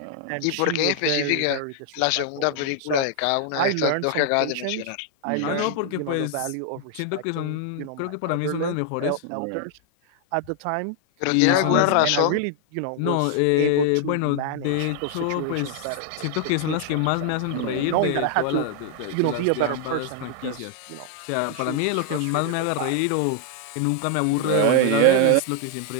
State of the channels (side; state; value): both; different; correlation 0.00